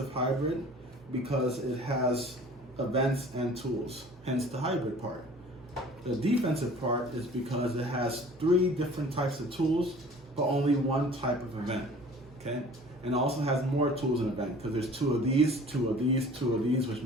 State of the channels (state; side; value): normal; both; correlation 0.47